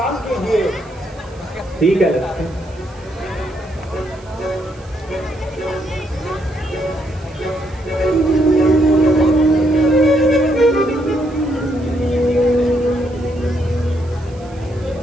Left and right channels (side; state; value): right; noise; hiss, 27 dB below the sound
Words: कीजिए। ठीक है लक्ष्मण।